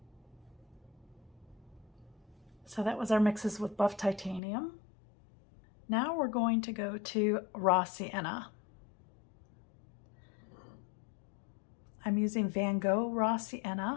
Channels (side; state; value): right; drops out; at 4.4 s